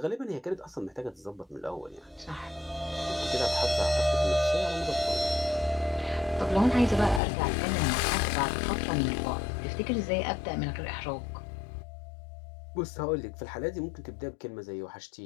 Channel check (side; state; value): right; drops out; at 7.2 s